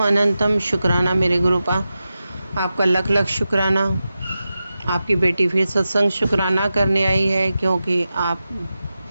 अनंतम शुक्राना मेरे गुरुपा। आपका लख लख शुक्राना। आपकी बेटी फिर सत्संग शुक्राना करने आई है क्योंकि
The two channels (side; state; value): both; inverted; correlation -0.92